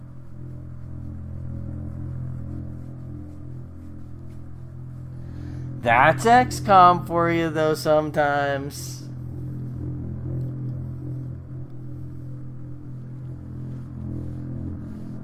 That's XCOM for you, though, sometimes.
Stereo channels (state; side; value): identical; both; correlation 1.00